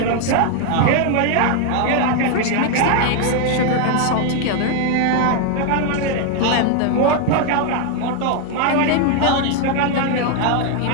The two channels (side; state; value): both; different; correlation 0.01